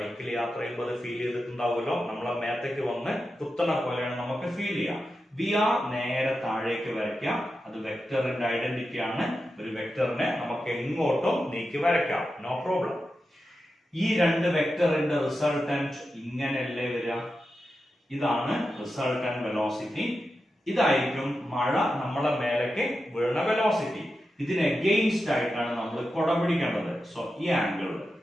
യാത്ര ചെയ്യുമ്പോൾ അത് ഫീൽ ചെയ്തിട്ടുണ്ടാവുമല്ലോ, നമ്മളെ മേത്തേക്ക് വന്ന് കുത്തണ പോലെയാണ് നമുക്ക് ഫീൽ ചെയ്യുക. വി ആർ നേരെ താഴേക്ക് വരയ്ക്കാം, അത് വെക്ടറിന്റെ ഐഡന്റിറ്റി ആണ്. ഒരു വെക്ടറിനെ നമുക്ക് എങ്ങോട്ടും നീക്കി വരയ്ക്കാം, നോ പ്രോബ്ലം. ഈ രണ്ട് വെക്ടറിന്റെ റിസൾട്ടന്റ് ഇങ്ങനെയല്ലേ വരിക? ഇതാണ് റിസൾട്ടന്റ് വെലോസിറ്റി. ഇതായിരിക്കും മഴ നമ്മളെ മേലേക്ക് വീഴുന്ന വെലോസിറ്റി. ഇതിന് എഗെയിൻസ്റ്റ് ആയിട്ടാണ് നമ്മൾ കുട പിടിക്കേണ്ടത്. സോ ഈ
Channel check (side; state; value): both; normal; correlation 0.90